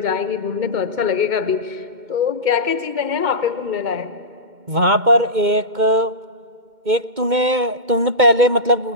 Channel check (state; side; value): late; left; 2.2 ms